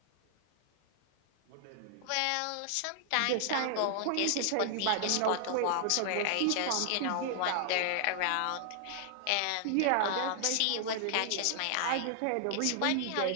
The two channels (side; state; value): both; different; correlation -0.01